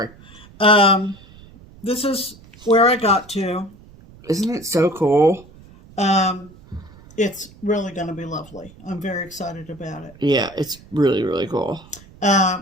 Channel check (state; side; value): noise; right; rumble, 23 dB below the sound